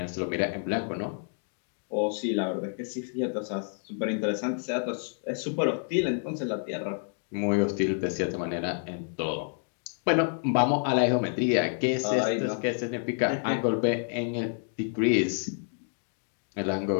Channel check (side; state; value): right; silent; 55 dB below the other